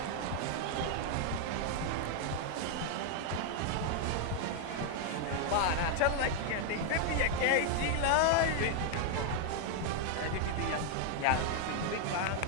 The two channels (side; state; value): both; different; correlation 0.00